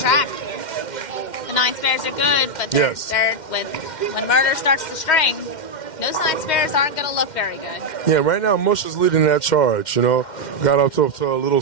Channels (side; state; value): right; late; 2.1 ms